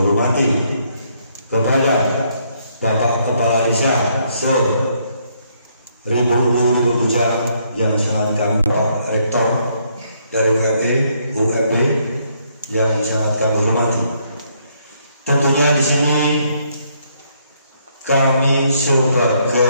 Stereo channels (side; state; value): both; inverted; correlation -0.71